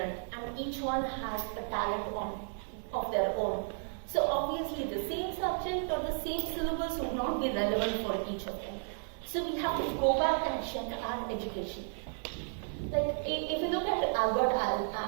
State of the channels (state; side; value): silent; left; digital silence